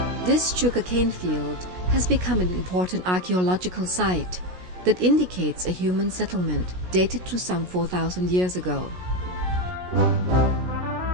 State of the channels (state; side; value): late; left; 16 ms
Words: This sugarcane field has become an important archaeological site that indicates a human settlement dated to some 4,000 years ago.